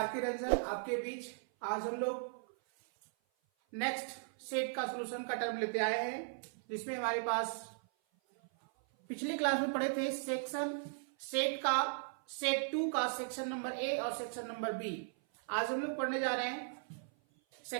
Ranjan आपके बीच आज हम लोग नेक्स्ट सेट का सॉल्यूशन का टर्म लेते आए हैं, जिसमें हमारे पास पिछली क्लास में पढ़े थे सेट 2 का सेक्शन नंबर ए और सेक्शन नंबर बी। आज हम लोग पढ़ने जा रहे हैं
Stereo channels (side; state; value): left; silent; 53 dB below the other